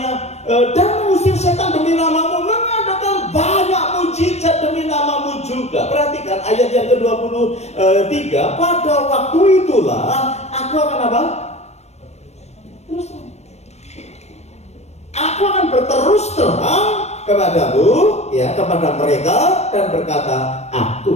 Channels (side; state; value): right; late; 0.31 ms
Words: dan mengusir setan demi namamu, mengadakan banyak mujizat demi namamu juga. Perhatikan ayat yang ke-23, pada waktu itulah aku akan apa? Terus aku akan berterus terang kepadamu, ya, kepada mereka, dan berkata,